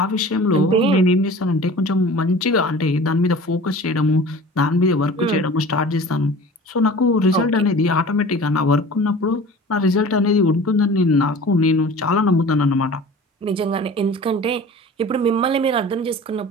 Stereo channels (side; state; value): both; normal; correlation 0.41